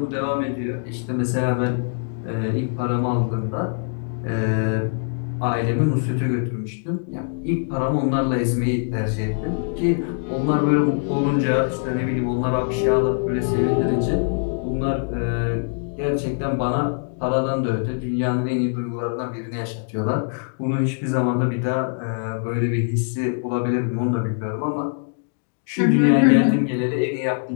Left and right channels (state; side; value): silent; right; 63 dB below the other